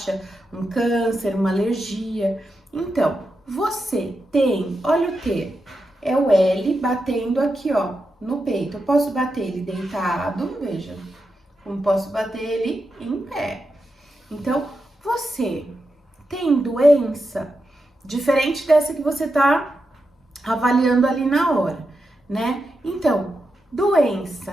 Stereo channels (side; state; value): both; normal; correlation 0.87